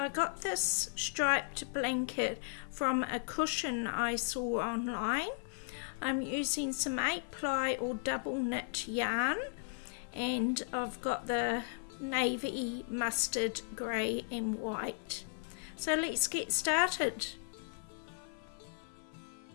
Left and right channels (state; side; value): silent; right; 54 dB below the other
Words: got this striped blanket from a cushion I saw online. I'm using some 8-ply or double knit yarn, and I've got the navy, mustard, grey and white. So let's get started.